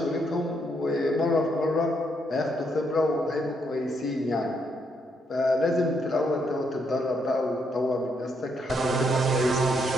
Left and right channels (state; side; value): normal; both; correlation 0.75